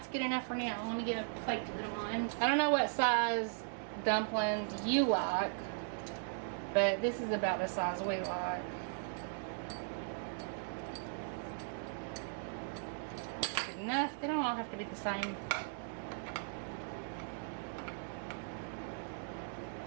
good enough for now. Let me get a plate to put them on. I don't know what size dumplings you like, but this is about the size we like. Good enough. They don't all have to be the same.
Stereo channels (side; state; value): left; silent; digital silence